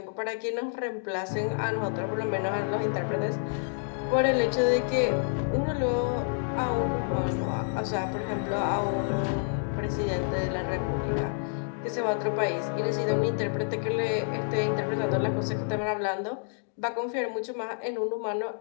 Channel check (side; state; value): right; silent; digital silence